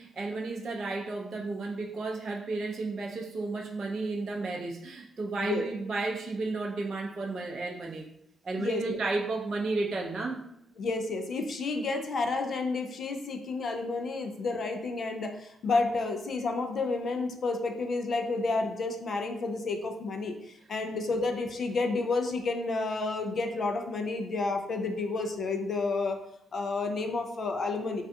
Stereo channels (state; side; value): normal; both; correlation 0.78